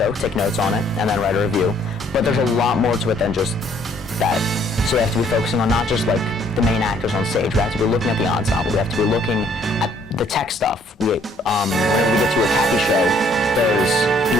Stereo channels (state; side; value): normal; both; correlation 0.63